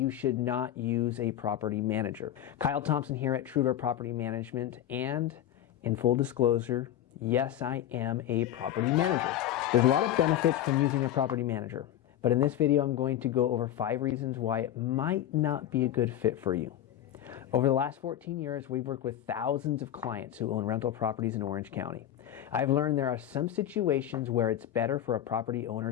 should not use a property manager. Kyle Thompson here at Truedoor Property Management, and in full disclosure, yes, I am a property manager. There's a lot of benefits from using a property manager, but in this video I'm going to go over 5 reasons why it might not be a good fit for you. Over the last 14 years, we've worked with thousands of clients who own rental properties in Orange County. I've learned there are some situations where it's better for a property owner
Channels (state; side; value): quieter; right; 11.7 dB